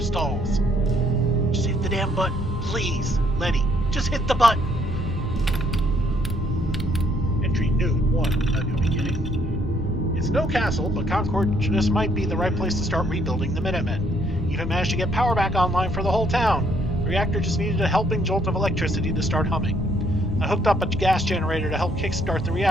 Just hit the damn button, please, Lenny. Just hit the button. Entry new 1, a new beginning. It's no castle, but Concord just might be the right place to start rebuilding the Minutemen. Even managed to get power back online for the whole town. The reactor just needed a helping jolt of electricity to start humming. I hooked up a gas generator to help kickstart the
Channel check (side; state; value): both; normal; correlation 0.68